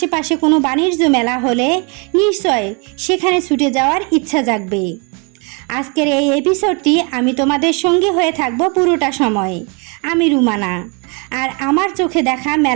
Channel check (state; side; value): quieter; left; 33.5 dB